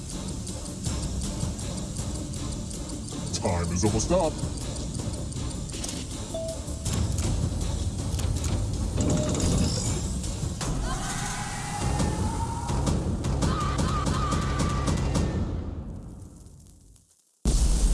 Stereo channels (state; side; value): identical; both; correlation 1.00